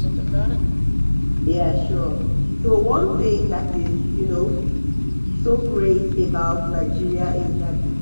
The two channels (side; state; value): both; inverted; correlation -1.00